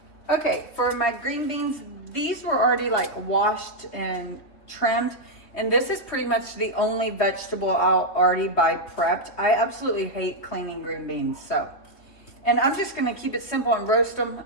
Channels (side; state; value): right; late; 3.2 ms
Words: Okay, for my green beans, these were already like washed and trimmed. And this is pretty much the only vegetable I'll already buy prepped. I absolutely hate cleaning green beans, so. And I'm just gonna keep it simple and roast them.